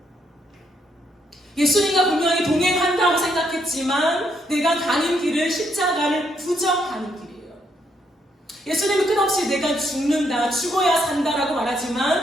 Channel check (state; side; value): normal; both; correlation 0.74